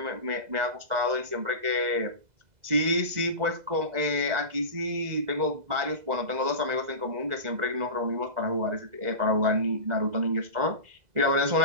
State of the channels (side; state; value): left; late; 2.0 ms